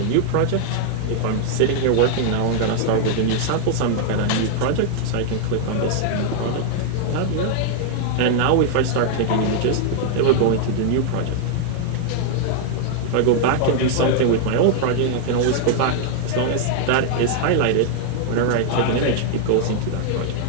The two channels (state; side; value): different; both; correlation 0.00